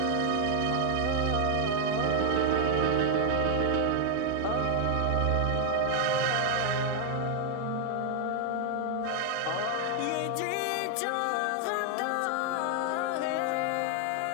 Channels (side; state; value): both; different; correlation 0.00